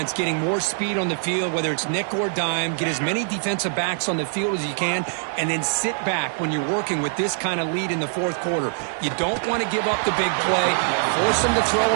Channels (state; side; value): silent; left; 63 dB below the other